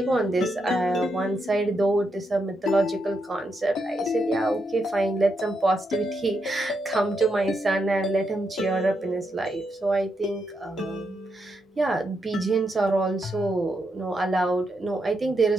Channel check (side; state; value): both; normal; correlation 0.82